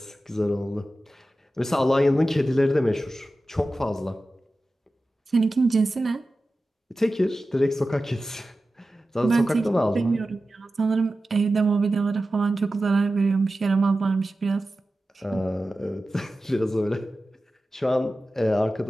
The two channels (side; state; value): both; normal; correlation 0.94